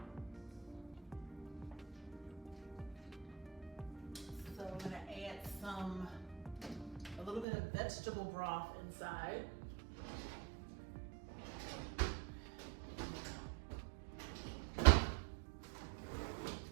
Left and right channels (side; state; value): left; drops out; at 7.5 s